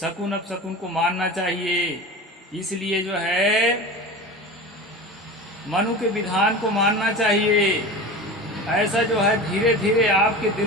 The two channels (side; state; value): both; normal; correlation 0.31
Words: अपशकुन को मानना चाहिए। इसलिए जो है मनु के विधान को मानना चाहिए। ऐसा जो है धीरे धीरे आपके